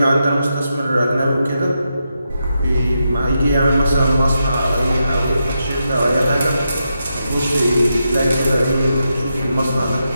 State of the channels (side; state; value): both; inverted; correlation -0.85